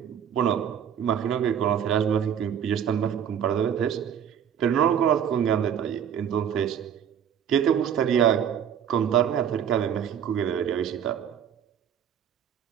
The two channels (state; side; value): quieter; left; 8.8 dB